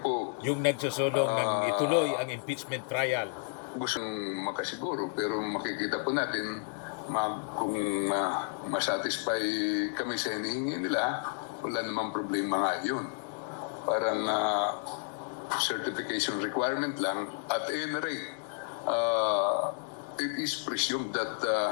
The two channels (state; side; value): silent; right; 57 dB below the other